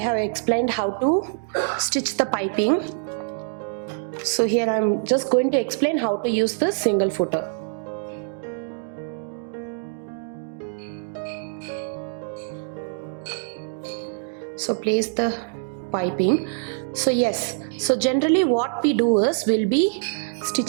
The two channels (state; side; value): silent; left; digital silence